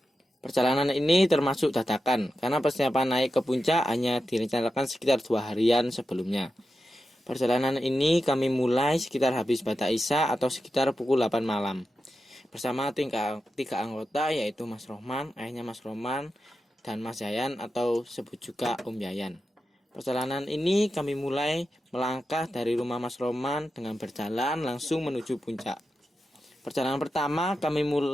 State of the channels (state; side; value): normal; both; correlation 0.90